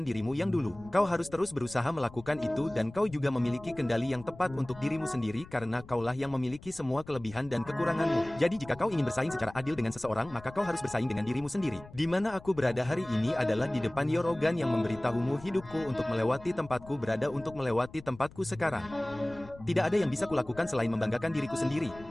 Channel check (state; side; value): noise; left; rumble, 19 dB below the sound